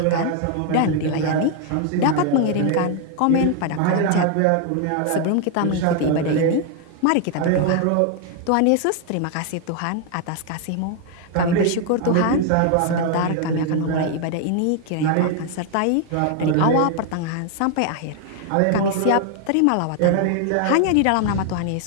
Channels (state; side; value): different; both; correlation 0.00